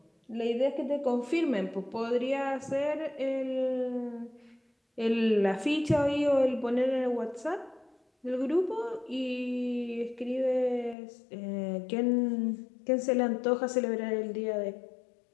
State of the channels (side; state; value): right; drops out; at 11.0 s